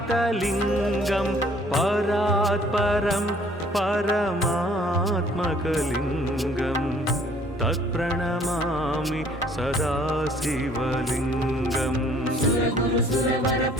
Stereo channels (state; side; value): normal; both; correlation 0.58